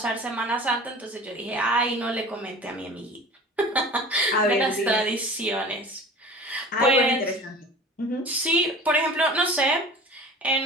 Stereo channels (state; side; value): normal; both; correlation 0.39